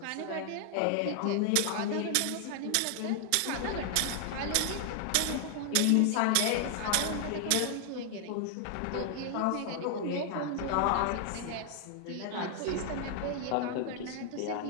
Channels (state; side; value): different; both; correlation 0.00